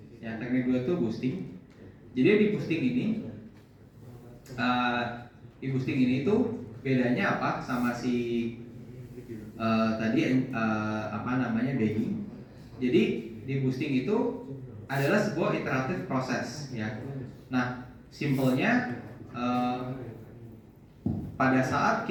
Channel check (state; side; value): identical; both; correlation 1.00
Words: Ya teknik kedua itu boosting. Jadi di boosting ini tuh bedanya apa sama si tadi apa namanya Beijing. Jadi di boosting itu adalah sebuah iteratif proses ya. Nah simpelnya pada saat